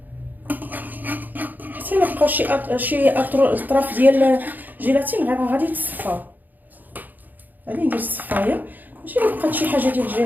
حتى الا بقاو شي اطراف ديال الجيلاتين غادي تصفاو. غادي ندير الصفايه ماشي الا بقات شي حاجه ديال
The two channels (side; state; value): left; late; 0.085 ms